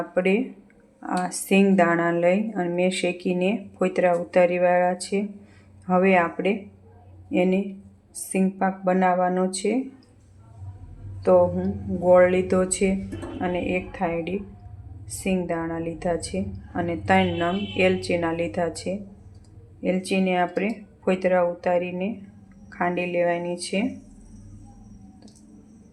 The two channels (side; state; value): both; identical; correlation 1.00